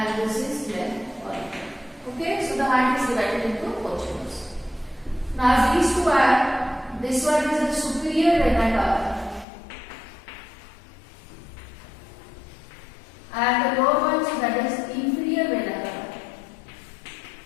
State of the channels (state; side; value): drops out; right; at 9.5 s